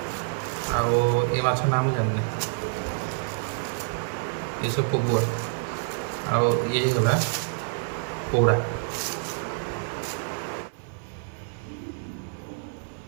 आउ ये माछ ना मुझे जाननी ये सब पगुआ आउ ये गला पोड़ा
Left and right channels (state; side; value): silent; left; 56 dB below the other